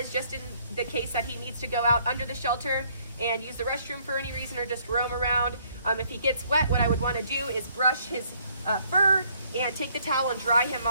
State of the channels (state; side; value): inverted; both; correlation -0.66